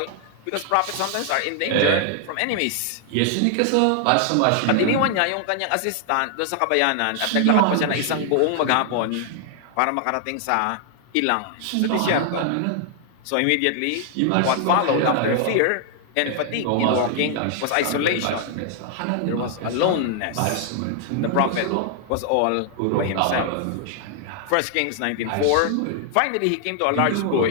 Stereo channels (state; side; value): different; both; correlation 0.00